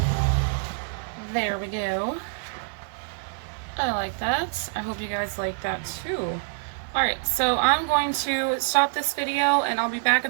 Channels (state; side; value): silent; left; digital silence